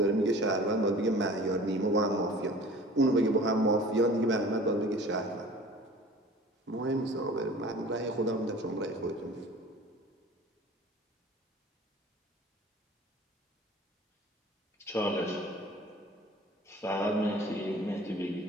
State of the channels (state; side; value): normal; both; correlation 0.44